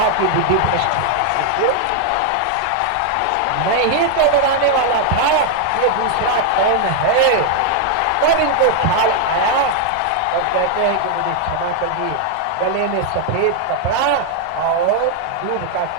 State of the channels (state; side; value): different; both; correlation 0.00